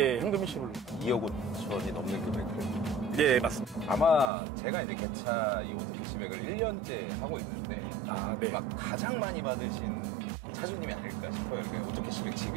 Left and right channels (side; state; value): left; drops out; at 4.2 s